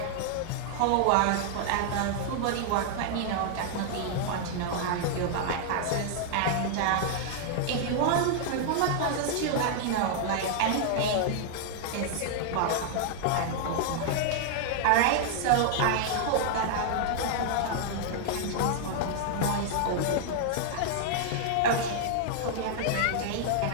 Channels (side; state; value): both; different; correlation -0.01